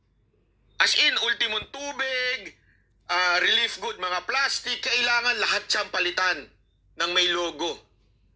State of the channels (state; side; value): identical; both; correlation 1.00